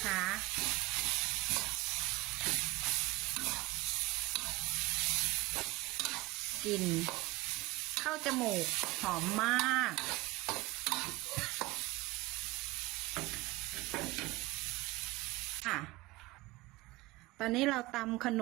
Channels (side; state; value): left; quieter; 22.1 dB